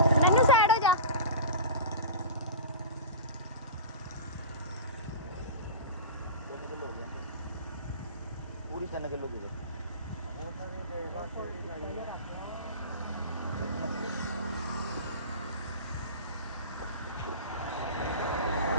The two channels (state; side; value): inverted; both; correlation -0.31